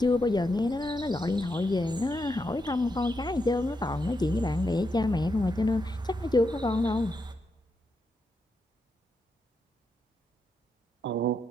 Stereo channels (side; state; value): both; normal; correlation 0.83